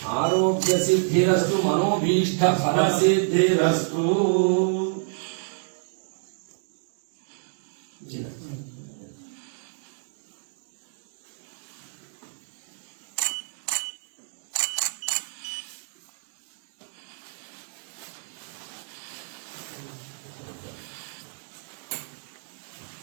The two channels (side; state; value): left; silent; digital silence